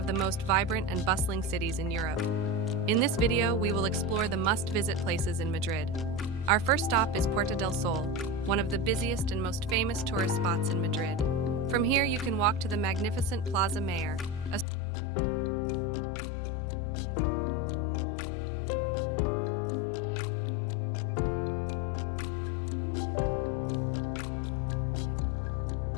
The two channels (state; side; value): drops out; right; at 14.7 s